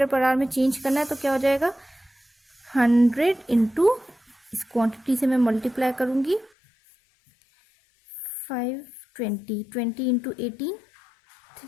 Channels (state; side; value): drops out; right; at 6.5 s